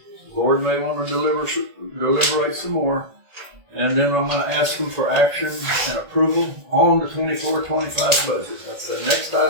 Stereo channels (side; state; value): left; late; 1.8 ms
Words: The board may want to deliberate some more. And then I'm going to ask them for action and approval on the 24-25 budget. That's the next